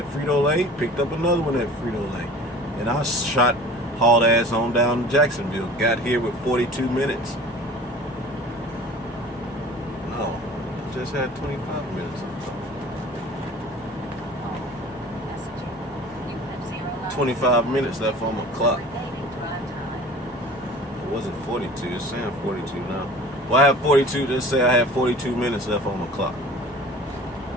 Frito-Lay. Picked up another one at Frito-Lay. And I hauled ass on down to Jacksonville. Got here with 42 minutes. No, I just had 25 minutes. 25 minutes left on my clock. It wasn't 42. It's saying 42 now. Well, I have 42. Let's say I have 42 minutes left on my clock.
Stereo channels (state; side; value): normal; both; correlation 0.43